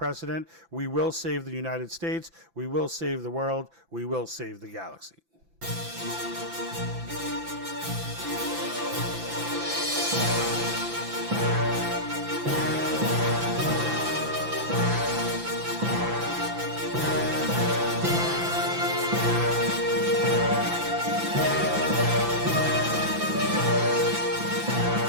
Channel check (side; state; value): left; late; 5.9 ms